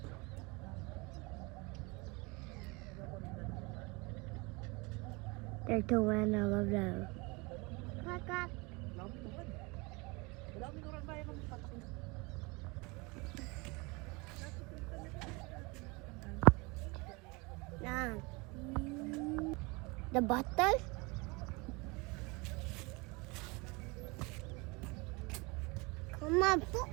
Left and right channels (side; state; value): left; quieter; 26.9 dB